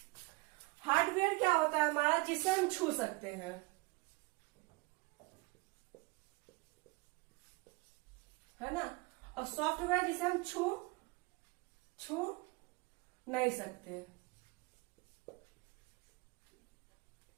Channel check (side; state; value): left; quieter; 26.0 dB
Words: हार्डवेयर क्या होता है हमारा, जिसे हम छू सकते हैं, है ना। और सॉफ्टवेयर जिसे हम छू नहीं सकते।